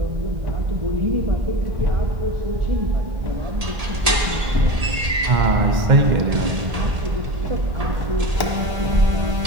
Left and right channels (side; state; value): left; late; 1.8 ms